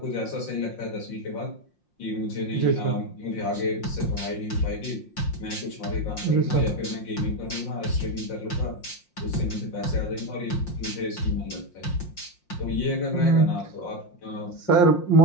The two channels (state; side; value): late; right; 5.6 ms